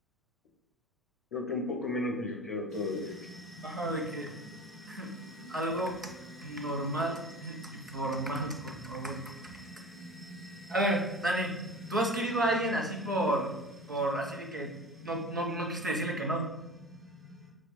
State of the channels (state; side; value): normal; both; correlation 0.35